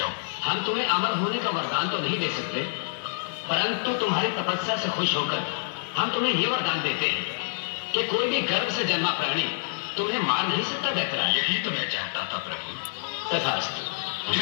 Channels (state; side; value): silent; right; digital silence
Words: हम तुम्हें अमर होने का वरदान तो नहीं दे सकते, परंतु तुम्हारी तपस्या से खुश होकर हम तुम्हें यह वरदान देते हैं कि कोई भी गर्भ से जन्मा प्राणी तुम्हें मार नहीं सकता दैत्यराज। यही तो मैं चाहता था प्रभु। तथास्तु।